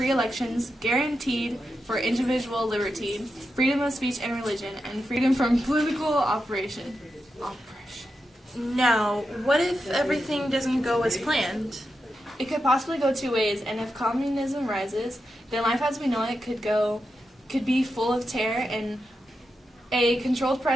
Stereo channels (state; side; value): normal; both; correlation 0.88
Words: elections, guaranteed for individual liberty, freedom of speech and religion, and freedom from political oppression. Now, what if everything doesn't go as planned? It could possibly go two ways, and if communism rises, then life as we know it could be full of terror and a controlled